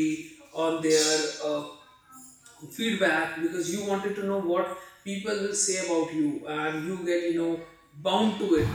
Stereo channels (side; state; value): both; identical; correlation 1.00